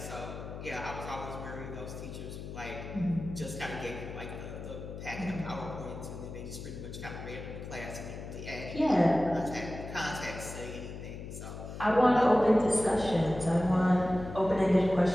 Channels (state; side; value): noise; left; hum, 10 dB below the sound